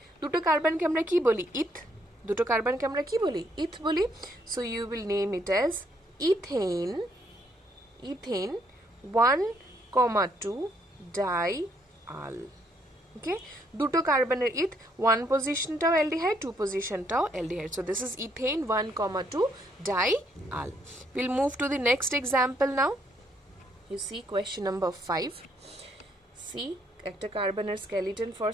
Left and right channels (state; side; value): normal; both; correlation 0.71